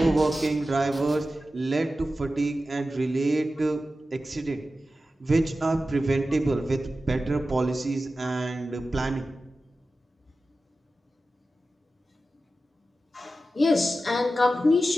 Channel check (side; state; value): both; normal; correlation 0.93